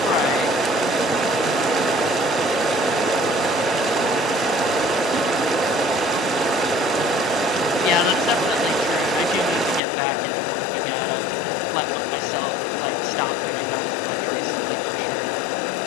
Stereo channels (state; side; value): drops out; right; at 9.8 s